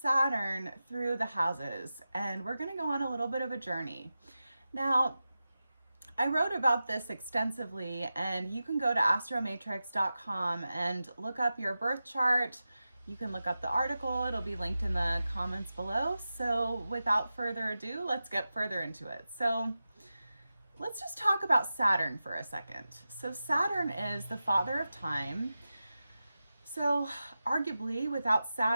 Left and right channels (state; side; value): inverted; both; correlation -0.93